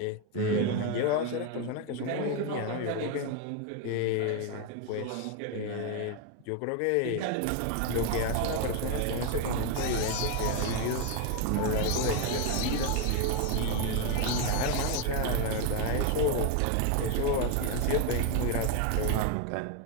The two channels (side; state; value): both; different; correlation 0.01